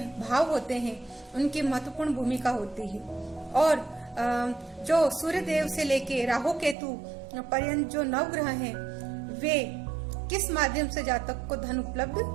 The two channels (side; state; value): left; drops out; at 6.8 s